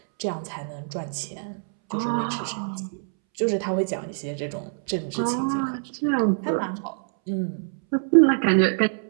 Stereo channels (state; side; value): silent; left; 62 dB below the other